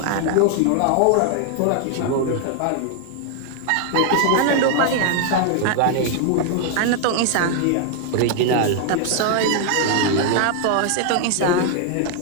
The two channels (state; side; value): different; both; correlation 0.00